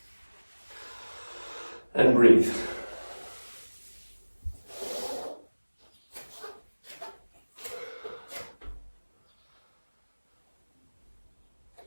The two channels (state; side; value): inverted; both; correlation -1.00